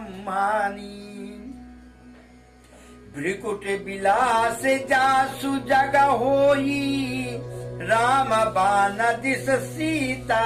भृकुट विलास जासु जग होई, राम बान दिस सीता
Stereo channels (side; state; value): both; identical; correlation 1.00